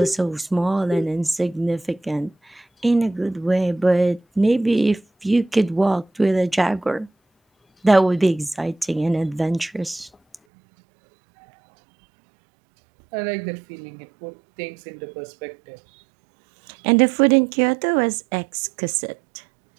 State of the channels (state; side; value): drops out; left; at 10.4 s